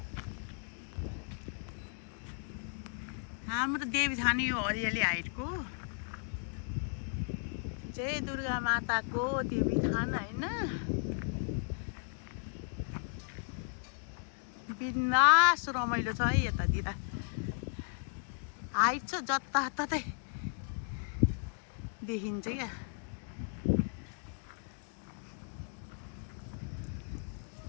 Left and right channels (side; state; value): right; silent; 54 dB below the other